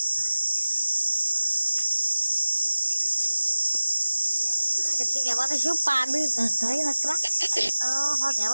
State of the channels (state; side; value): inverted; both; correlation -1.00